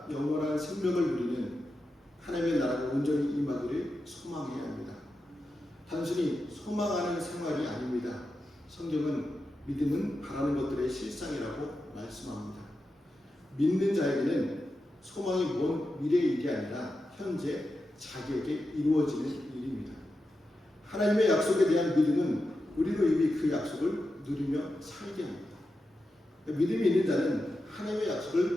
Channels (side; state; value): both; normal; correlation 0.90